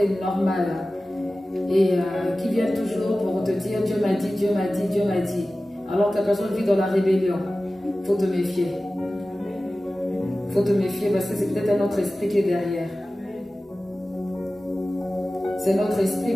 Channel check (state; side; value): normal; both; correlation 0.96